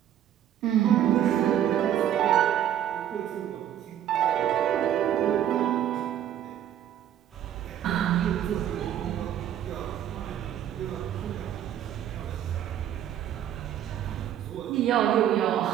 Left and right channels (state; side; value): quieter; left; 10.8 dB